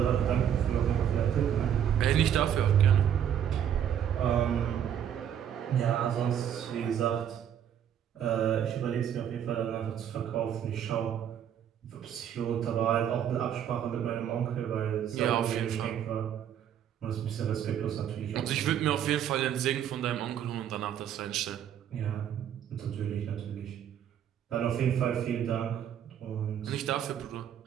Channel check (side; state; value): left; quieter; 9.4 dB